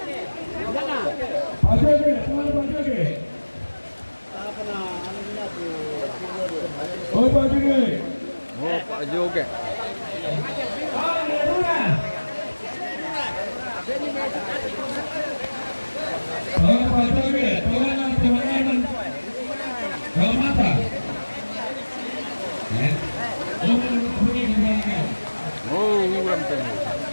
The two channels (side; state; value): both; inverted; correlation -1.00